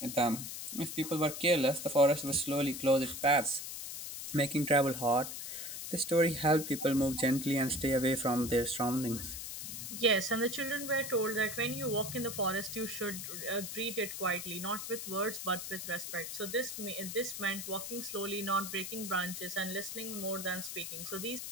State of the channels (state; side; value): noise; left; hiss, 7 dB below the sound